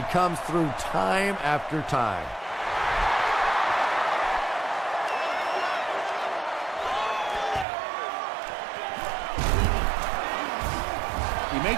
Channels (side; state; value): left; drops out; at 7.7 s